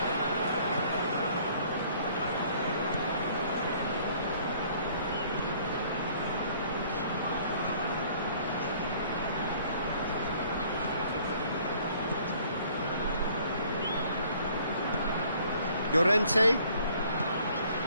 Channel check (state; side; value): inverted; both; correlation -0.58